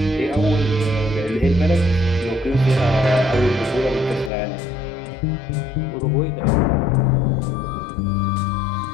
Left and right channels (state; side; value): drops out; right; at 4.3 s